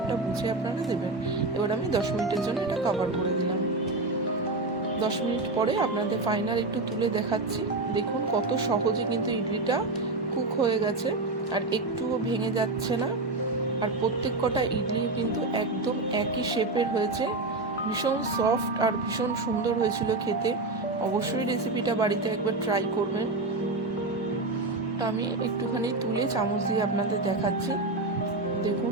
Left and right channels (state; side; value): quieter; left; 3.2 dB